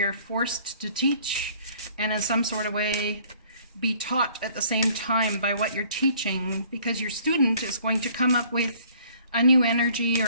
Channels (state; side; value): inverted; both; correlation -0.57